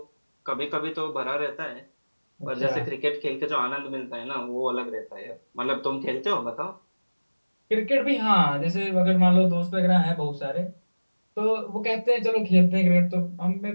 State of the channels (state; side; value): inverted; both; correlation -1.00